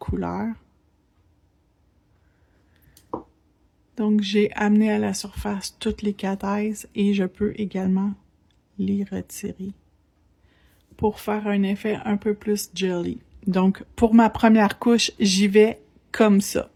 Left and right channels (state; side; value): identical; both; correlation 1.00